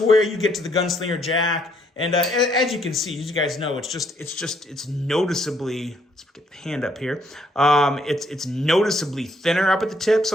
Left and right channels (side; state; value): both; normal; correlation 0.70